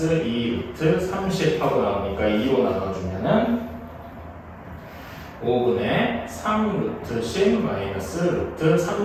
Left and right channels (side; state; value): both; identical; correlation 1.00